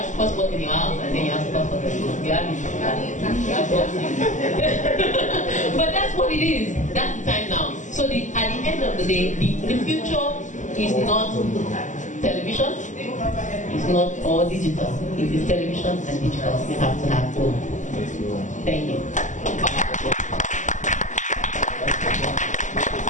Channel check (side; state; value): right; late; 0.36 ms